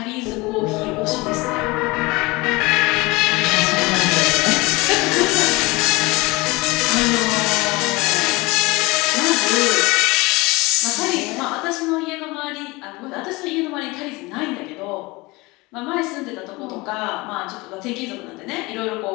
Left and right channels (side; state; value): right; quieter; 23.3 dB